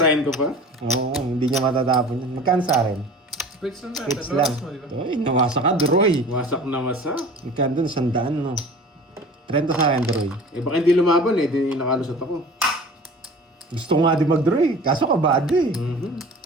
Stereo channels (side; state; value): both; normal; correlation 0.41